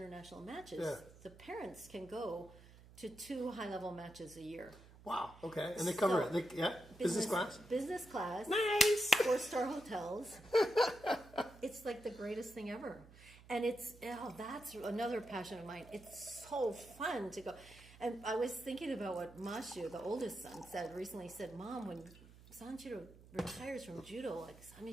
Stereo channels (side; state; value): right; noise; hum, 21 dB below the sound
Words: matches, the parents can go to 2 high-level matches a year. Wow. Okay. And they cover So, it. Business class. Business class. Nice. 4-star hotels. It's like the greatest thing ever. And that's another passion of mine. It's so fun to go. And I was thinking about what Mashu, the oldest son, recently said, Mom, when Sanjiro retires from judo, like,